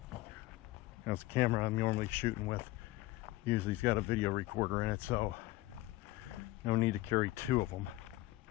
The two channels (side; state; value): right; quieter; 18.1 dB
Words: That's the camera I'm normally shooting with. Usually it's got a video recorder in it, so no need to carry two of them.